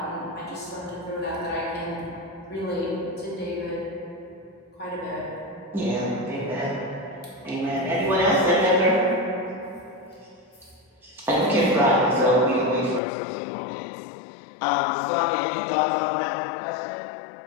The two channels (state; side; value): drops out; right; at 13.0 s